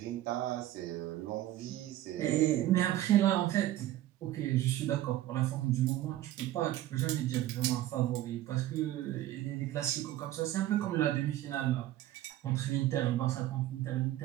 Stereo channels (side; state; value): left; quieter; 14.1 dB